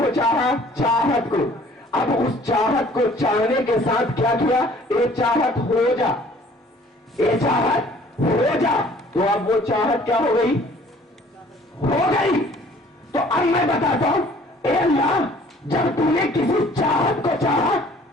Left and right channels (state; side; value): normal; both; correlation 0.54